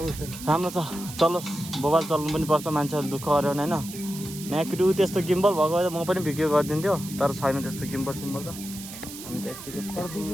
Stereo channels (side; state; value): right; noise; hiss, 12 dB below the sound